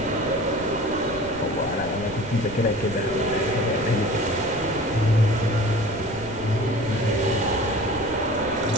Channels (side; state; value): right; noise; rumble, 17 dB below the sound